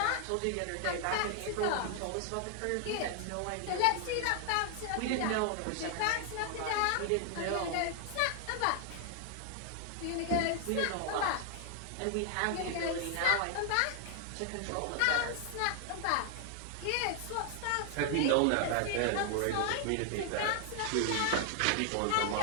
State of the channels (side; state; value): both; different; correlation 0.00